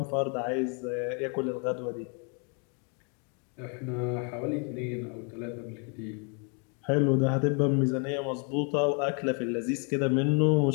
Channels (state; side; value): quieter; right; 37.9 dB